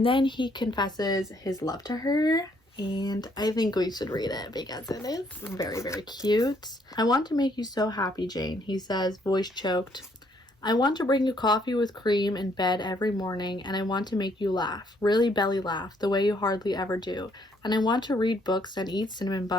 then he confesses his love to her, and I think we should read it because it is very, very cute. I want to make you so happy, Jane, he says, voice choked. I want to bring you coffee with cream in bed every morning, and I want to make you laugh, really belly laugh, the way you hardly ever do. And I want to read books and eat cinnamon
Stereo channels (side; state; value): both; normal; correlation 0.68